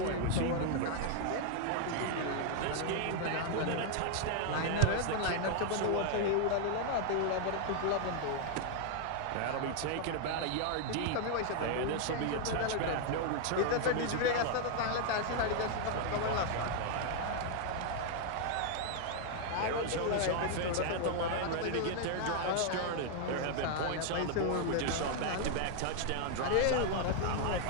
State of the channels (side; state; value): both; different; correlation 0.00